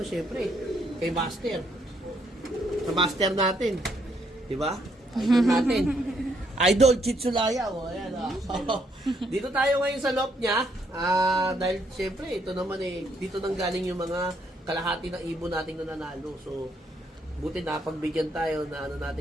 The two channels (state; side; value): normal; both; correlation 0.72